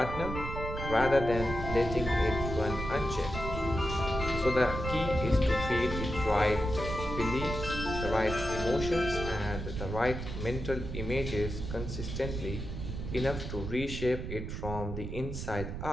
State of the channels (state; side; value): noise; right; rumble, 6 dB below the sound